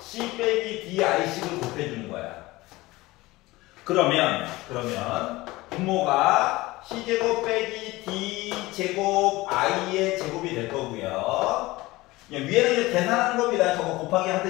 c 빼기 di식을 곱해주는 거야. 그러면 분모가 c제곱 빼기 d제곱 i의 제곱이 될 거고요. 위에는 이제 계산하는 겁니다. 저거 곱하기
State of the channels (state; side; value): quieter; right; 19.9 dB